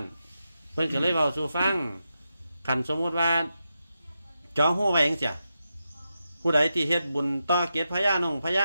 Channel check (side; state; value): both; inverted; correlation -0.88